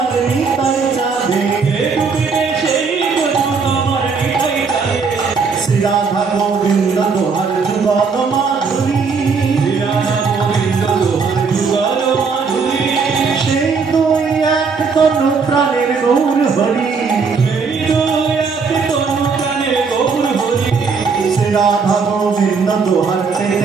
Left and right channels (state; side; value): quieter; left; 5.1 dB